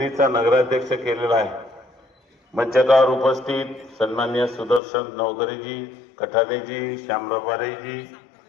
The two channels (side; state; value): right; drops out; at 4.8 s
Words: नगराध्यक्ष केलेला आहे। मंचावर उपस्थित सन्माननीय सुदर्शन नवकरेजी, कठारेजी, श्यामरावारेजी,